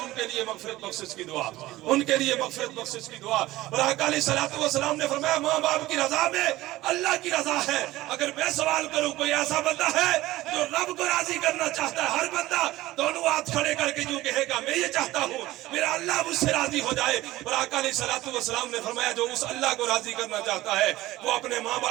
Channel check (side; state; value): left; quieter; 17.2 dB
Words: کے لیے مغفرت بخشش کی دعا، ان کے لیے مغفرت بخشش کی دعا۔ اور آقا علیہ السلام نے فرمایا ماں باپ کی رضا میں اللہ کی رضا ہے۔ اگر میں سوال کروں کوئی ایسا بندہ ہے جو رب کو راضی کرنا چاہتا ہے، ہر بندہ دونوں ہاتھ کھڑے کر کے یوں کہے گا میں یہ چاہتا ہوں میرا اللہ مجھ سے راضی ہو جائے۔ اور آقا علیہ السلام نے فرمایا جو اس اللہ کو راضی کرنا چاہتا ہے وہ اپنے ماں